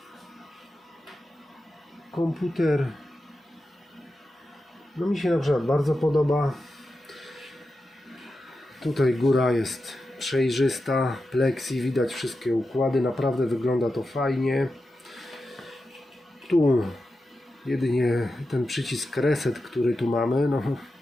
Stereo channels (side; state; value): both; normal; correlation 0.90